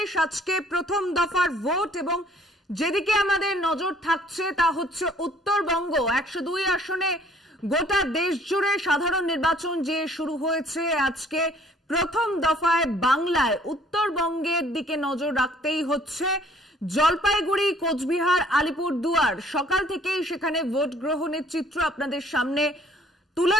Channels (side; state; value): both; normal; correlation 0.58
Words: আজকে প্রথম দফার ভোট এবং যেদিকে আমাদের নজর থাকছে তা হচ্ছে উত্তরবঙ্গ। 102 আসনে গোটা দেশ জুড়ে সাধারণ নির্বাচন যে শুরু হয়েছে, আজকে প্রথম দফায় বাংলায় উত্তরবঙ্গের দিকে নজর রাখতেই হচ্ছে। জলপাইগুড়ি, কোচবিহার, আলিপুরদুয়ার সকাল থেকেই সেখানে ভোট গ্রহণের চিত্র আপনাদের সামনে তুলে